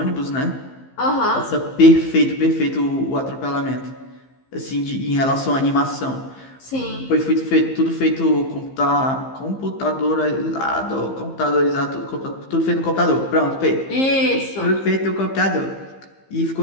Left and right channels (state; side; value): late; right; 15 ms